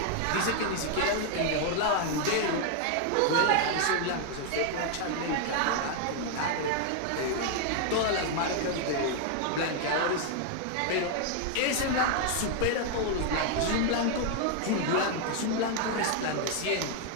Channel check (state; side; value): different; both; correlation 0.00